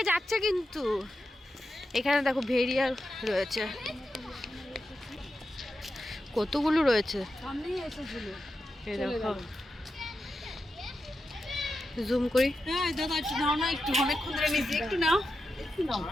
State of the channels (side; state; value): both; normal; correlation 0.89